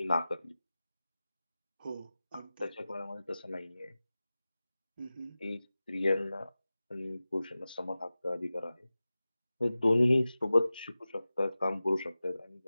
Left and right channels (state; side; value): inverted; both; correlation -0.96